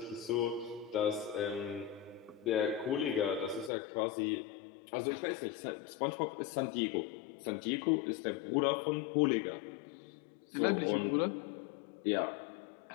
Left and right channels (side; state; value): right; drops out; at 3.7 s